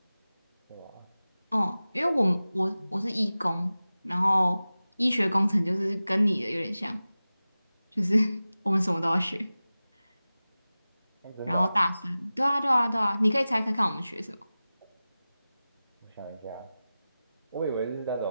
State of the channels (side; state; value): both; inverted; correlation -0.96